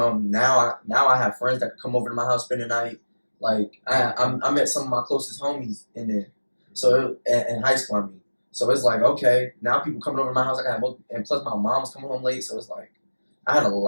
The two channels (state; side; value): inverted; both; correlation -1.00